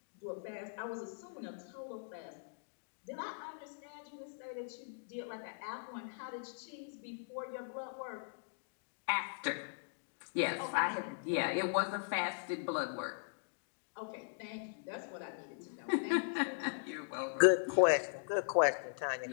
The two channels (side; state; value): right; silent; digital silence